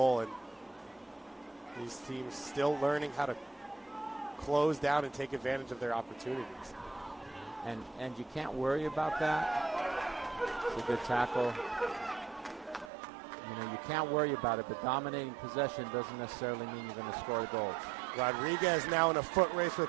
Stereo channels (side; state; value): left; drops out; at 12.9 s